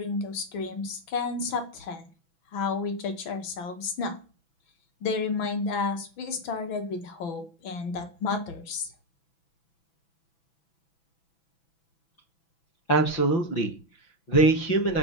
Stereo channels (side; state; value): right; late; 6.0 ms